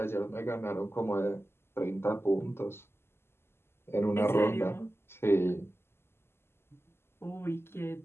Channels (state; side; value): late; right; 0.12 ms